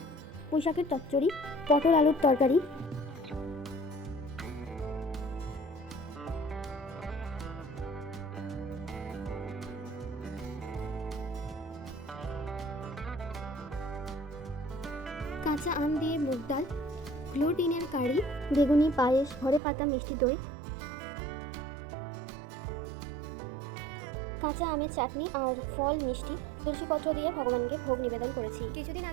পুঁইশাকের চচ্চড়ি, পটল আলুর তরকারি, কাঁচা আম দিয়ে মুগ ডাল, গ্লুটিনের কারি, বেগুনি পায়েস, ঘরে পাতা মিষ্টি দই, কাঁচা আমের চাটনি আর ফল মিষ্টি, তুলসীপত্র দিয়ে ভগবানকে ভোগ নিবেদন করেছি। কিছুদিন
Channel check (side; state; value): left; drops out; at 19.6 s